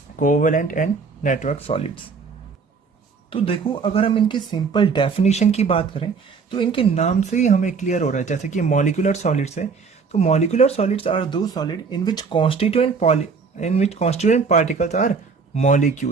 कोवेलेंट एंड नेटवर्क सॉलिड्स. तो देखो, अगर हम इनके सिंपल डेफिनेशन की बात करें तो इनके नाम से ही हमें क्लियर हो रहा है. जैसे कि मॉलिक्यूलर सॉलिड्स है, तो molecular solids are those solid in which constituent particles are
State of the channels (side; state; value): left; quieter; 5.1 dB